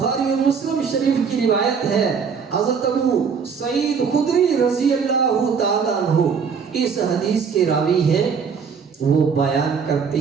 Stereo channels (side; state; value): left; quieter; 6.2 dB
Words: اور مسلم شریف کی روایت ہے، حضرت ابو سعید خدری رضی اللہ تعالیٰ عنہ اس حدیث کے راوی ہیں۔ وہ بیان کرتے